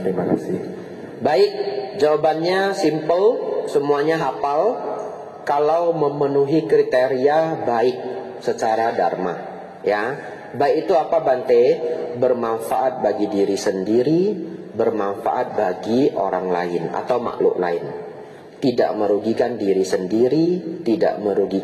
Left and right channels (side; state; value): both; identical; correlation 1.00